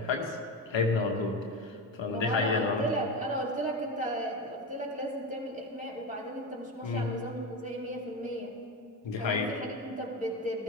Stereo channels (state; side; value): normal; both; correlation 0.20